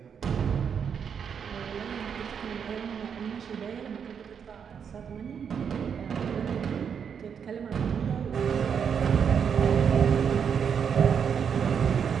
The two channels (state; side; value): quieter; left; 7.2 dB